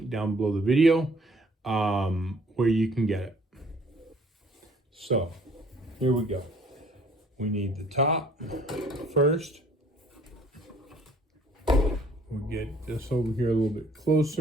down below the video where you can get it. So here we go. We need the top first. We'll get this over here a little bit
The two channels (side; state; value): both; normal; correlation 0.57